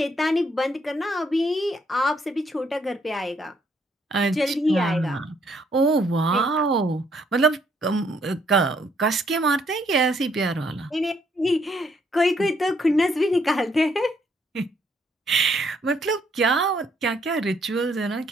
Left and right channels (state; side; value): normal; both; correlation 0.70